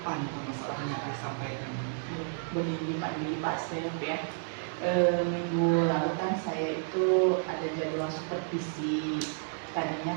nih permasalahan yang disampaikan? Begini Pak Di, Pak Stef ya. Minggu lalu kan saya itu ada jadwal supervisi.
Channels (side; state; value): left; silent; digital silence